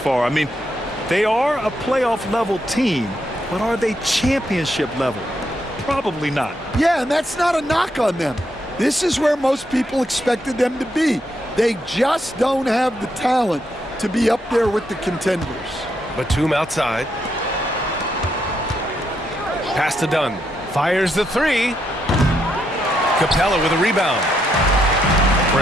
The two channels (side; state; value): both; normal; correlation 0.79